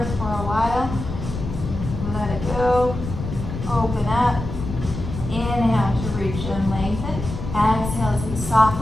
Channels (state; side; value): noise; left; rumble, 7 dB below the sound